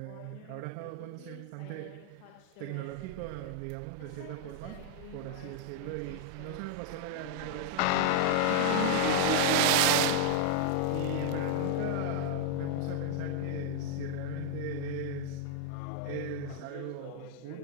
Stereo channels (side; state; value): both; different; correlation 0.00